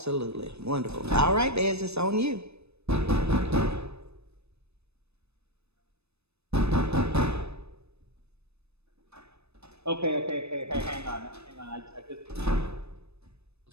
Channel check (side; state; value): left; late; 0.79 ms